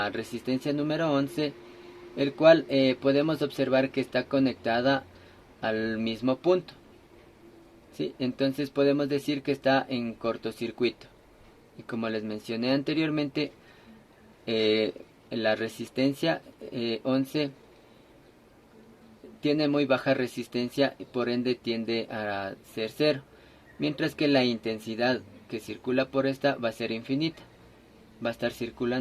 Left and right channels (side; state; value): both; identical; correlation 1.00